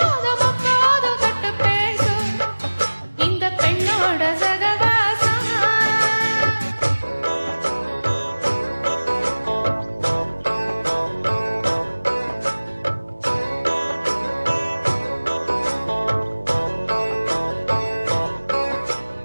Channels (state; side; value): inverted; both; correlation -1.00